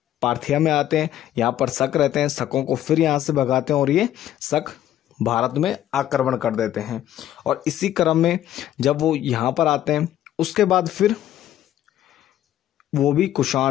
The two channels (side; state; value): right; quieter; 12.2 dB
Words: पार्थिया में आते हैं, यहाँ पर शक रहते हैं, शकों को फिर यहाँ से भगाते हैं और ये शक भारत में आक्रमण कर देते हैं। और इसी क्रम में जब वो यहाँ पर आते हैं उसके बाद फिर वो भी